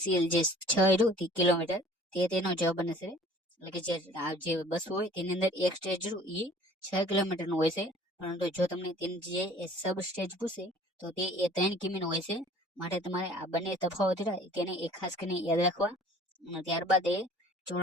સી જે 6 કિલોમીટર તે તેનો જવાબ બને છે. એટલે કે જે બસ હોય તેની અંદર એક સ્ટેજ એ 6 કિલોમીટર નું હોય છે, પરંતુ જો તમને તેની જે સબ સ્ટેજ પૂછે તો તે એ 3 કિમી નું હોય છે, માટે તમારે આ બંને તફાવત તેને એ ખાસ કરીને યાદ રાખવા. ત્યારબાદ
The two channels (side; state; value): both; normal; correlation 0.50